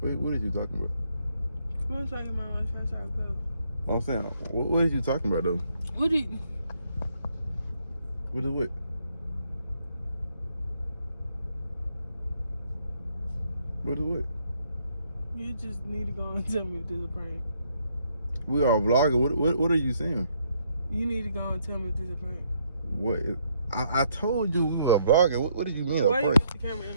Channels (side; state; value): both; inverted; correlation -0.71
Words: Wait, what are you talking about? Come on, so I get my large fries, I'll go. I'm saying, what are you talking about, though? What do you... What is what? What is what? You just need to go and tell me if this is a prank. We are vlogging. What are you saying? You need to go and tell me if this is a prank. What? I told you we were vlogging. What did you mean? Why you put the camera in